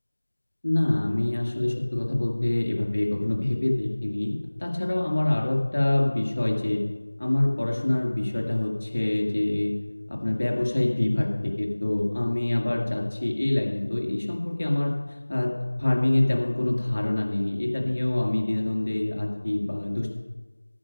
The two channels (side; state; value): both; inverted; correlation -1.00